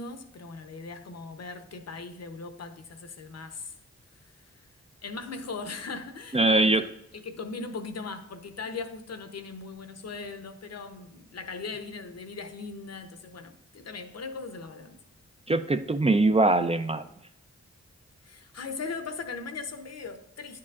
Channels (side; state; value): both; normal; correlation 0.48